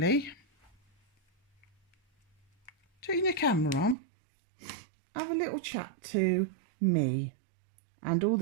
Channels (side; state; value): left; drops out; at 4.0 s